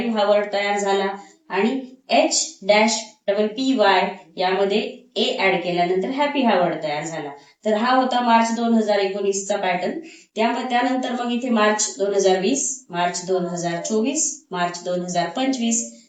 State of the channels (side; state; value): both; identical; correlation 1.00